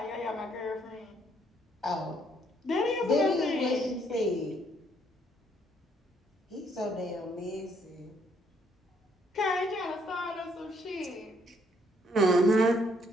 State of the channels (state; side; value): normal; both; correlation 0.69